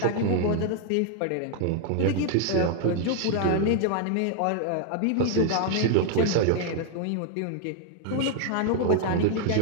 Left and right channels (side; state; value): both; different; correlation 0.00